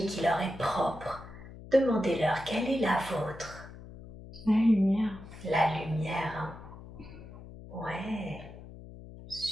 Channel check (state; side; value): noise; left; hum, 15 dB below the sound